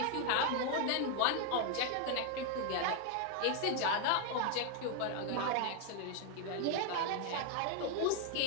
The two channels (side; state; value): both; different; correlation 0.00